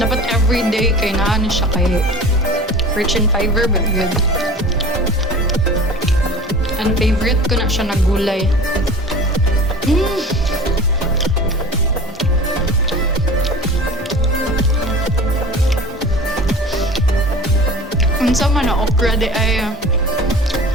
everyday kay naan siya kay rich in fiber but good. And favorite ko na siya na gulay. Unsa man na okra di ay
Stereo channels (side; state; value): both; normal; correlation 0.40